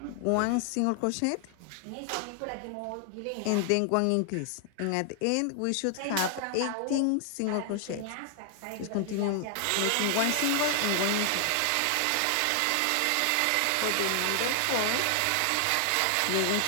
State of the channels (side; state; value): both; different; correlation 0.00